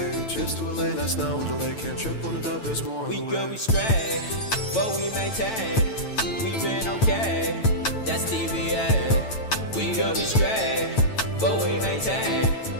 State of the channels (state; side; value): late; right; 9.0 ms